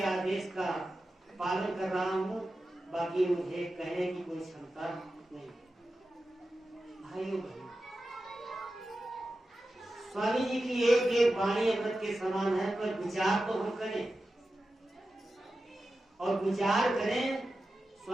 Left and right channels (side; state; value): both; normal; correlation 0.92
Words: आदेश का पालन कर रहा हूँ, बाकी मुझे कहने की कोई क्षमता नहीं। भाइयों बहनों, स्वामी जी की एक एक वाणी अमृत के समान है, पर विचार तो हम करें और विचार करें।